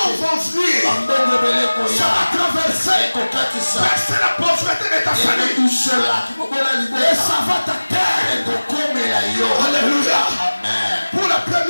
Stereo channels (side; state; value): both; inverted; correlation -1.00